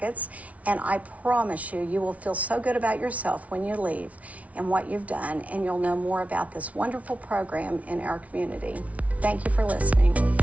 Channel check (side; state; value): left; late; 0.067 ms